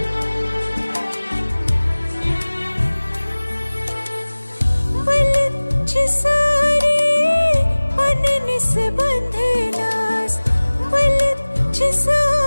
बलची सारी पननिस बंधनास बलची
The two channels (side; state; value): both; inverted; correlation -1.00